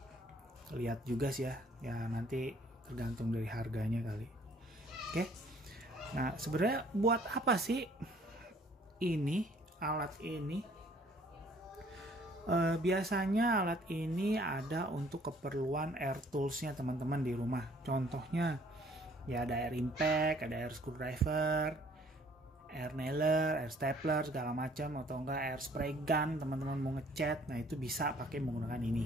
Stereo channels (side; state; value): both; normal; correlation 0.59